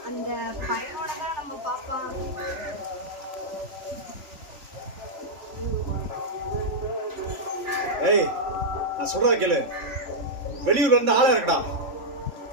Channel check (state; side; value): late; left; 3.4 ms